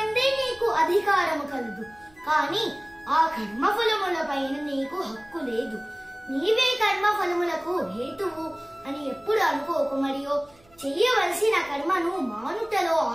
నీకు అధికారము కలదు, కాని ఆ కర్మఫలములపైన నీకు హక్కు లేదు. నీవే కర్మఫలములకు హేతువు అని ఎప్పుడు అనుకోకు, మరియు చెయ్యవలసిన కర్మను మానుటలో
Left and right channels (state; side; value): noise; right; hum, 30 dB below the sound